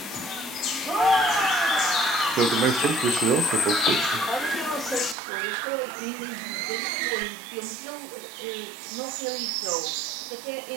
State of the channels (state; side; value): drops out; left; at 5.2 s